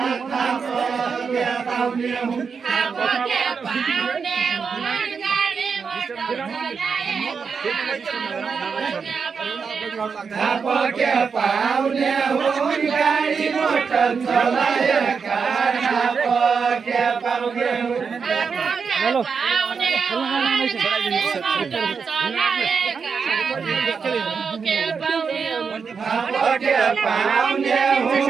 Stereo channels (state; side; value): quieter; left; 5.7 dB